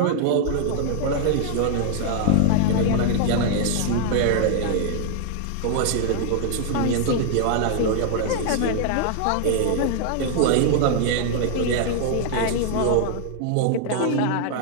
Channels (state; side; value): different; both; correlation 0.00